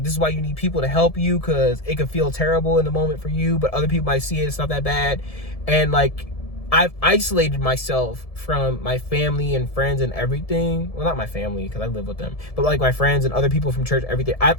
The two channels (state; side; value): late; right; 1.7 ms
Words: this is why you need people to help you, because it could feel terrible in the moment for you, but other people might see it, it's not that bad. And like, I've isolated myself from my family and friends and everything. Well, not my family, because I live with them, but like my friends and other people from church, everything. I've